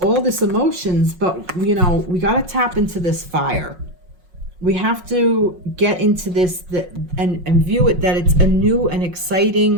this emotions, but we got to tap into this fire. We have to get into this and view it that it's a new and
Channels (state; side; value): late; left; 5.4 ms